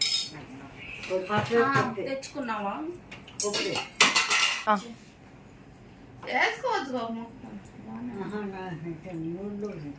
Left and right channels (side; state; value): both; identical; correlation 1.00